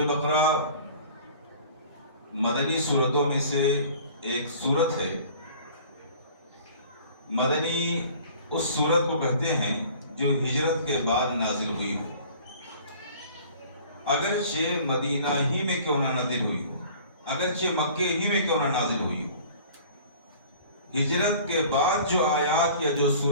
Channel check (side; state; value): both; inverted; correlation -0.47